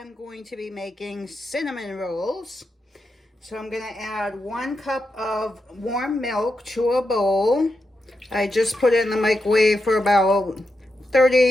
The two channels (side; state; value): both; normal; correlation 0.86